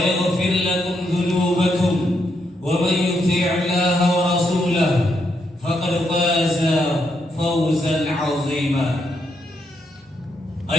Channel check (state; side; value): normal; both; correlation 0.79